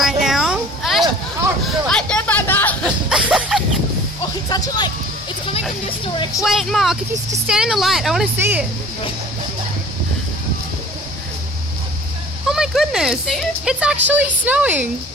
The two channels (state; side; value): normal; both; correlation 0.46